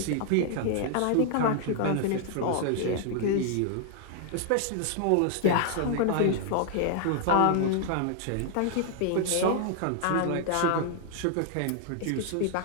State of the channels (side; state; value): both; different; correlation 0.00